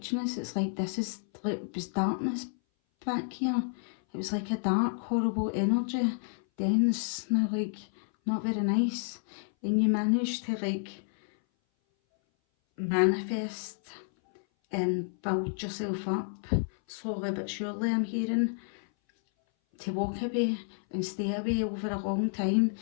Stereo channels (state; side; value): silent; right; 58 dB below the other